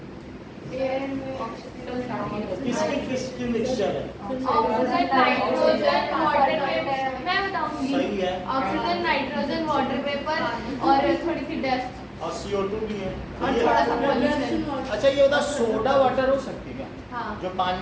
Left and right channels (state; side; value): identical; both; correlation 1.00